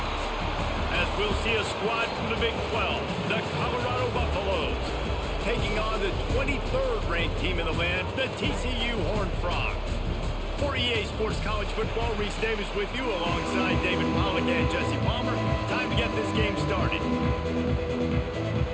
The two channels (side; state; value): both; identical; correlation 1.00